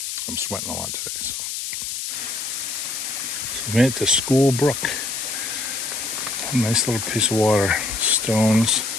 I'm sweating a lot today, so. We made it to School Brook. A nice little piece of water. Stones,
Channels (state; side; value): noise; left; hiss, 5 dB below the sound